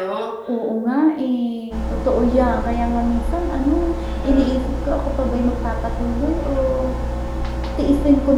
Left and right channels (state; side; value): identical; both; correlation 1.00